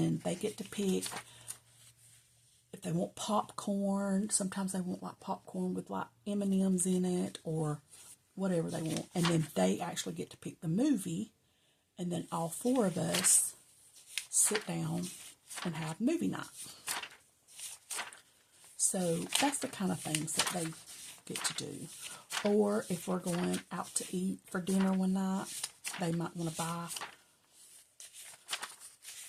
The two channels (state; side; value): identical; both; correlation 1.00